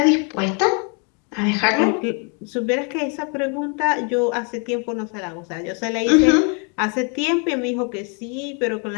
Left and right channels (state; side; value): quieter; right; 37.1 dB